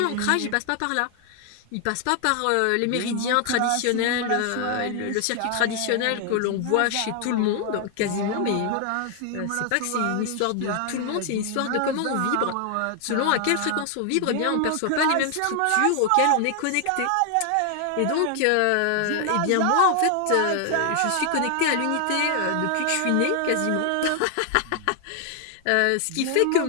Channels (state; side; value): different; both; correlation 0.00